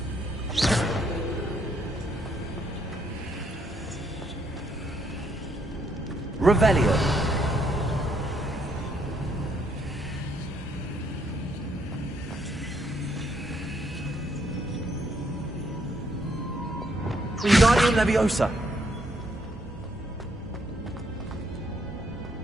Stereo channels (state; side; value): normal; both; correlation 0.72